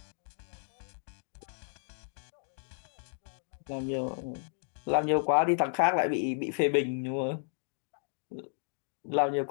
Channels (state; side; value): silent; right; digital silence